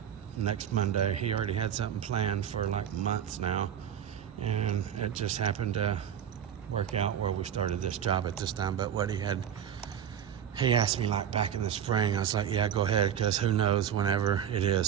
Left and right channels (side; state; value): left; quieter; 9.1 dB